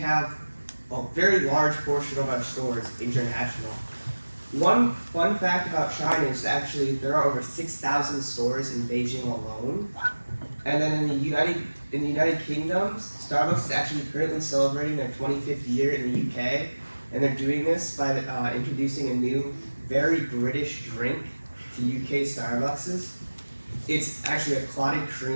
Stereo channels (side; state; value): both; inverted; correlation -1.00